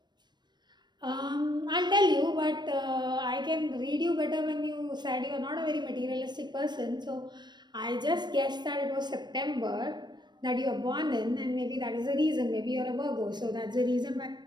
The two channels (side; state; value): left; late; 0.21 ms